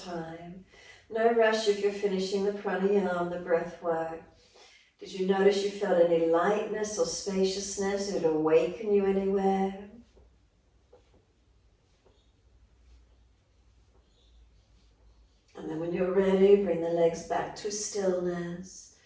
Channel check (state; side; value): identical; both; correlation 1.00